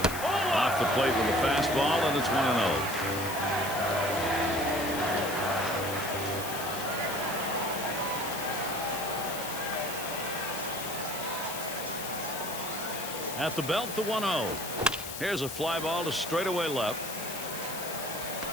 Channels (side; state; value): left; noise; hiss, 8 dB below the sound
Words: Off the plate with a fastball, and it's 1-0. At the belt, the 1-0. Here's a fly ball to straightaway left.